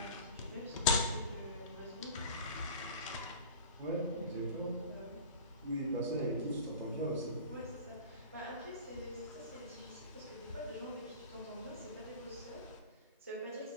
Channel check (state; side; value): inverted; both; correlation -0.37